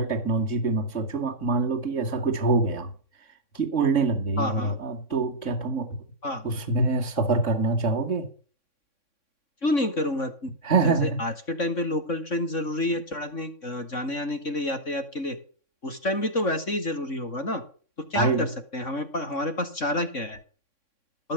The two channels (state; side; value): late; right; 3.6 ms